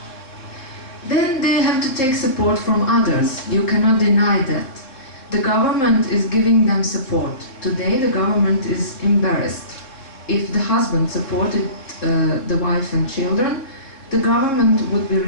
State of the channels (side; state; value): right; late; 3.7 ms